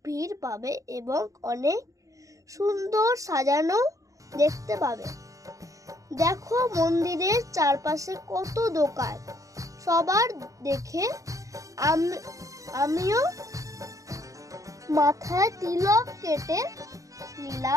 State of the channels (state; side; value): late; left; 0.16 ms